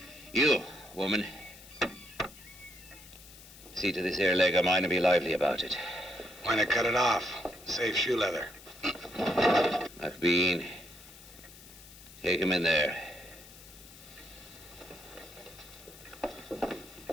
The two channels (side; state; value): left; noise; hiss, 19 dB below the sound